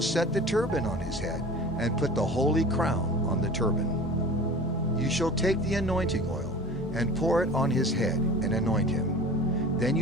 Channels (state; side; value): normal; both; correlation 0.40